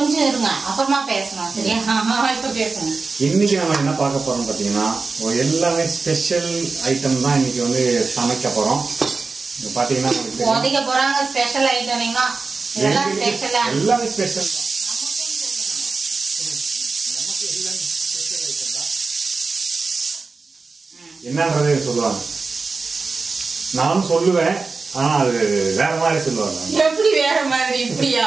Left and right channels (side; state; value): left; quieter; 4.2 dB